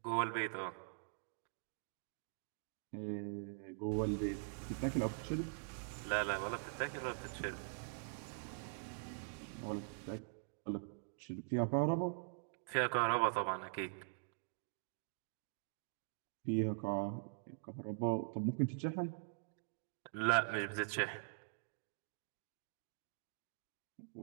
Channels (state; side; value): silent; left; digital silence